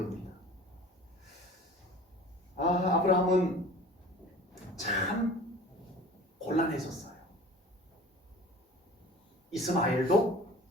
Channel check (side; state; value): both; normal; correlation 0.42